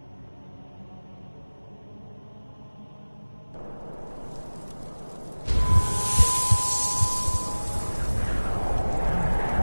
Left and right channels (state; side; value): inverted; both; correlation -1.00